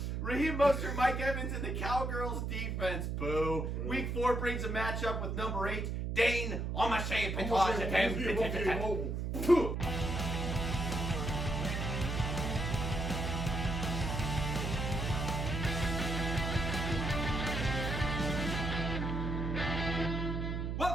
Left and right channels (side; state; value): right; noise; hum, 2 dB below the sound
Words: Raheem Mostert, Mike Evans, and the Cowgirls defense. Boo. Week 4 brings a matchup with number 8, Dane Amancher.